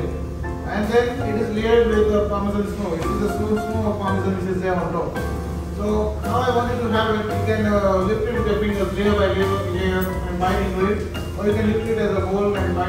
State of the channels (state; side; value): identical; both; correlation 1.00